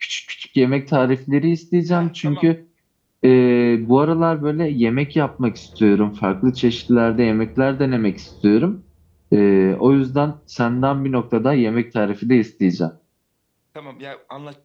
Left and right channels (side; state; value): both; identical; correlation 1.00